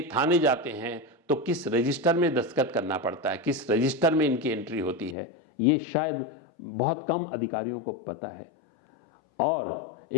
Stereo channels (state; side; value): drops out; right; at 5.2 s